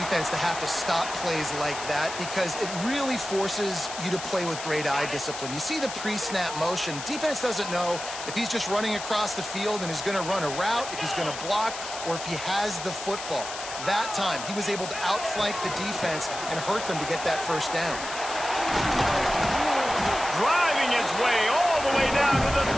to have to stop plays like that because it really forces you to play with great eye discipline. You see the pre-snap motion. Defense doesn't know if he's just running across the field and is going to run a route, if he's going to block, or if he has the football. That time, he was able to outflank the defense and hurt them to get that first down. Driving his way all the way down to the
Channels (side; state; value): left; noise; hiss, 9 dB below the sound